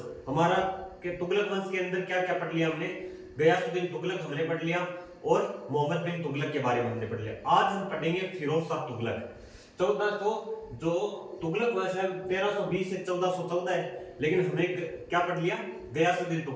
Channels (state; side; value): identical; both; correlation 1.00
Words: हमारा के तुगलक वंश के अंदर क्या क्या पढ़ लिया हमने? गयासुद्दीन तुगलक हमने पढ़ लिया और मोहम्मद बिन तुगलक के बारे में हमने पढ़ लिया। आज हम पढ़ेंगे फिरोज शाह तुगलक। 1400 जो तुगलक वंश है 1320 से 1414 है, लेकिन हमने क्या पढ़ लिया? गयासुद्दीन